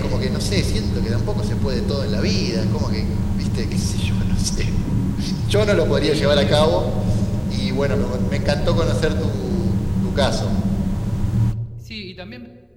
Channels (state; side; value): identical; both; correlation 1.00